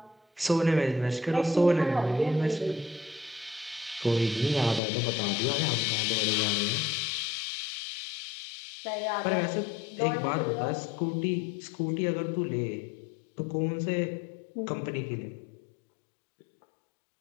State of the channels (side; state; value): right; drops out; at 4.8 s